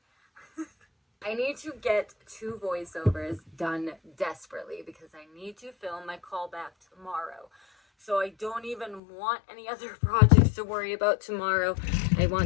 I need to get 2 voiceovers done desperately because I need to film my callback tomorrow. So I don't even want any other projects to worry about tomorrow. I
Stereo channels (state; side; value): drops out; right; at 9.0 s